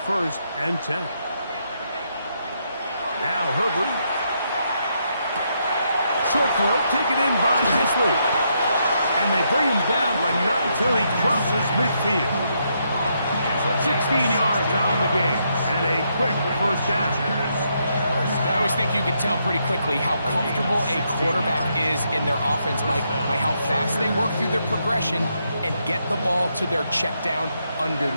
1st and 10. Now Herbert. Short throw taken in by Disley. And they bring him down, but not until he crosses midfield. 16 yards on the game and a quick first down. I always think you can tell pretty quickly how comfortable a quarterback is in their offense, Mike, by how fast they work through their progression and get the ball to their check down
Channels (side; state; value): both; inverted; correlation -0.78